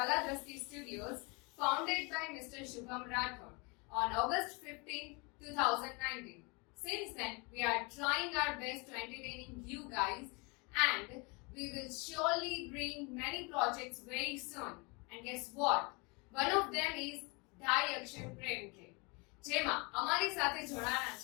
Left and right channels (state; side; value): quieter; right; 29.7 dB